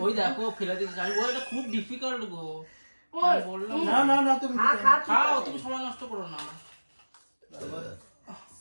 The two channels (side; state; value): both; inverted; correlation -1.00